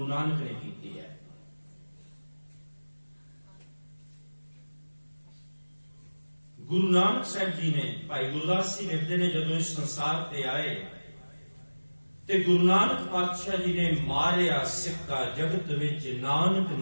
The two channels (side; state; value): both; inverted; correlation -1.00